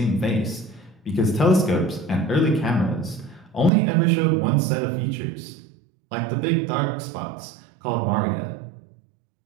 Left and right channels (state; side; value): drops out; left; at 3.7 s